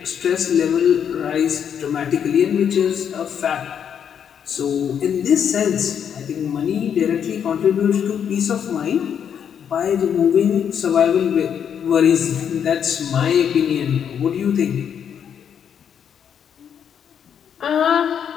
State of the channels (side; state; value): right; quieter; 8.2 dB